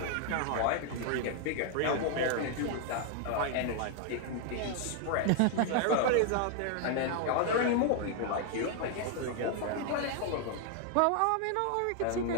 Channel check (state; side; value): different; both; correlation 0.00